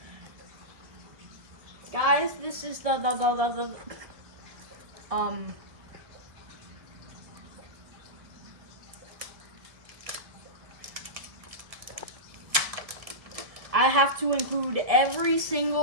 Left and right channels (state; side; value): late; left; 1.7 ms